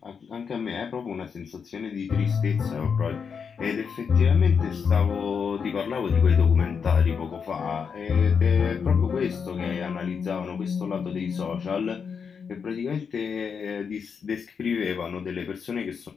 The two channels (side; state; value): right; quieter; 6.3 dB